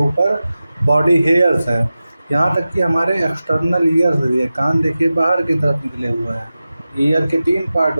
बॉडी हेयर्स हैं। यहाँ तक कि हमारे एक्सटर्नल ईयर्स भी है, कान देखिए बाहर की तरफ निकले हुए हैं। ईयर के 3 पार्ट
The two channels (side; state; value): both; inverted; correlation -0.95